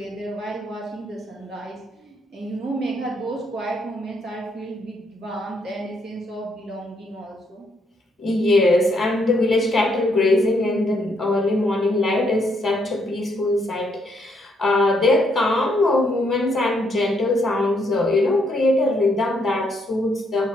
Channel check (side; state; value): both; normal; correlation 0.74